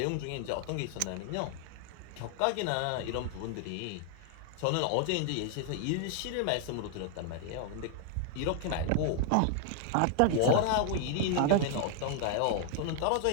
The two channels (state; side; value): different; both; correlation 0.00